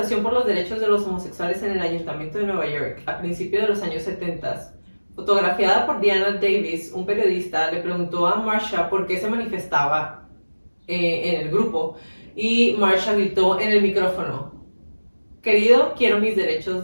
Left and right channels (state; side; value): inverted; both; correlation -1.00